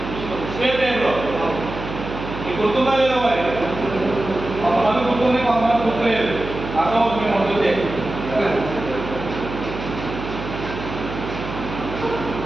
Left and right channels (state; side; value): noise; right; hum, 8 dB below the sound